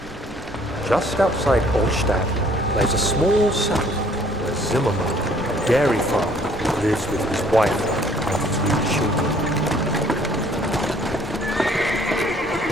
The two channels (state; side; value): normal; both; correlation 0.59